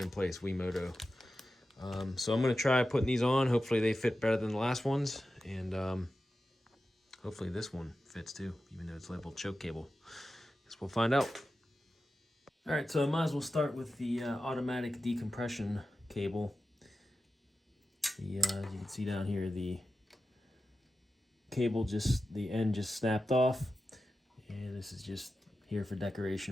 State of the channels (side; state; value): both; normal; correlation 0.92